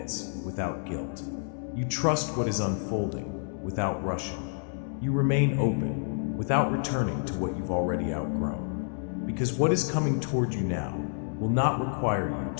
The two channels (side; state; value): right; silent; 59 dB below the other